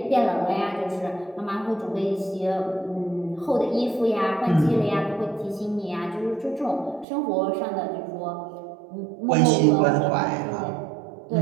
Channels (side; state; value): left; drops out; at 7.1 s